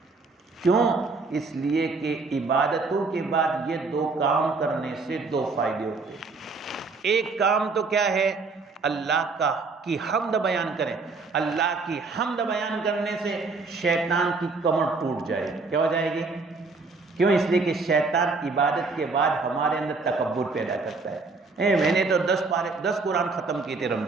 کیوں؟ اس لیے کہ عبادتوں کے بعد یہ دو کام کرنے سے دو فائدے ہوتے ہیں۔ ایک کام تو کیا ہے، اللہ کی حمد بیان کریں، اللہ کی حمد بیان کرنے سے شیطان کی کمر ٹوٹ جائے گی۔ کیا ہو جائے گی؟ کیوں؟ اس لیے کہ شیطان عبادت کے بعد ہمارے اندر تکبر پیدا کرتا ہے۔ میں نے تو 10 قرآن ختم کیے تھے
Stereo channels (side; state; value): left; quieter; 4.0 dB